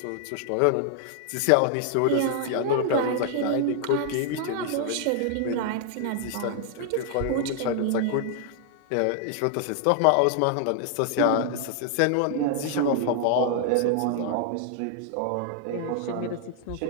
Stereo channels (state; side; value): different; both; correlation 0.00